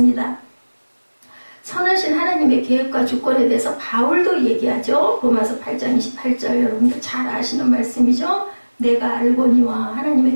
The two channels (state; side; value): inverted; both; correlation -1.00